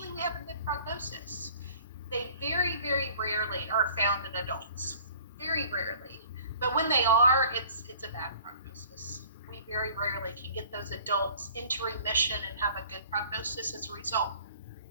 we have a good prognosis. They very, very rarely are found in adults, very rarely. But when they are, it's a bad prognosis. We very rarely can get those adults into remission and have a good prognosis as a result.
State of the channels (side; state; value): both; inverted; correlation -0.49